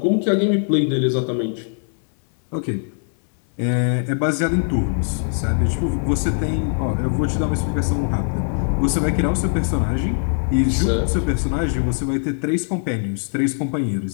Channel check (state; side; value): silent; right; digital silence